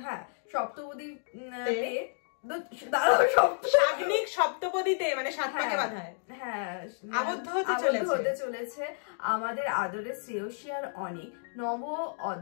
সপ্তপদী সপ্তপদীতে মানে 7 পাকে বাঁধায়, হ্যাঁ আবদ্ধ হতে চলেছে আমাদের আদরের শ্রেয়সী আর অনেক নব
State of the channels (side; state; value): right; silent; digital silence